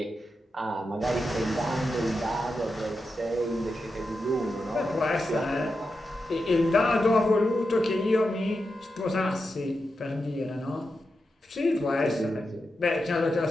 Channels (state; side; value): normal; both; correlation 0.88